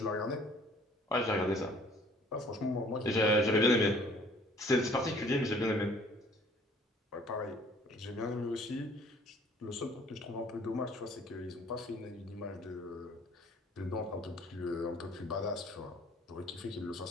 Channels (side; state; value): both; normal; correlation 0.55